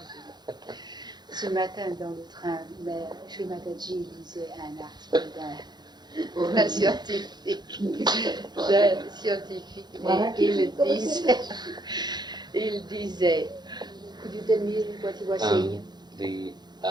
Ce matin dans le train, Sri Mataji lisait un article d'un scientifique. Et il disait, could you tell me what he was saying?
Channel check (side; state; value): left; late; 0.21 ms